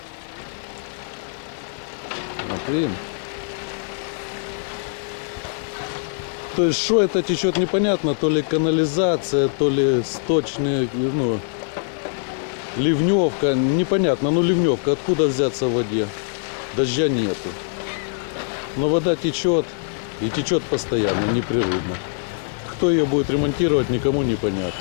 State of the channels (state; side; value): silent; right; 64 dB below the other